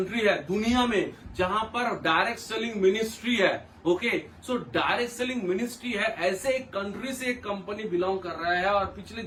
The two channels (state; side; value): identical; both; correlation 1.00